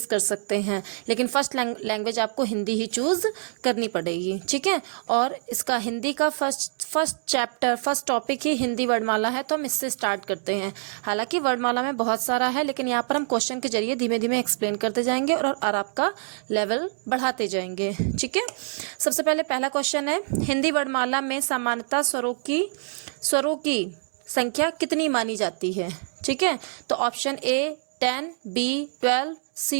कर सकते हैं, लेकिन फर्स्ट लैंग्वेज आपको हिंदी ही चूज़ करनी पड़ेगी, ठीक है। और इसका हिंदी का फर्स्ट टॉपिक ही हिंदी वर्णमाला है, तो हम इससे स्टार्ट करते हैं। हालांकि वर्णमाला में बहुत सारा है, लेकिन यहाँ पर हम क्वेश्चन के जरिए धीमे धीमे एक्सप्लेन करते जाएंगे और आपका लेवल बढ़ाते जाएंगे, ठीक है। सबसे पहले पहला क्वेश्चन है, हिंदी वर्णमाला में सामान्यतः स्वरों की संख्या कितनी मानी जाती है, ठीक है। तो option A 10, B 12,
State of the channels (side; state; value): left; silent; digital silence